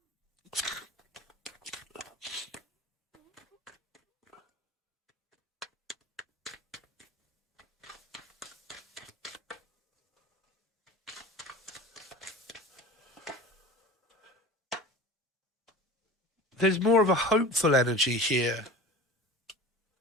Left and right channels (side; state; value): both; normal; correlation 0.36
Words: There's more of a hopeful energy here.